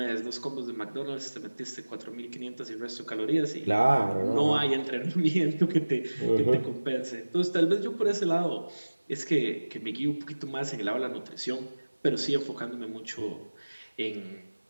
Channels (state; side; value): inverted; both; correlation -1.00